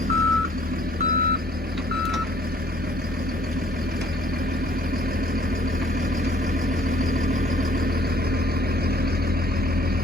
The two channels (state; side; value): normal; both; correlation 0.59